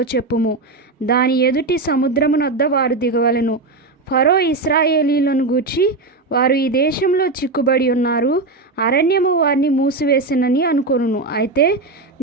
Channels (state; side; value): quieter; left; 3.5 dB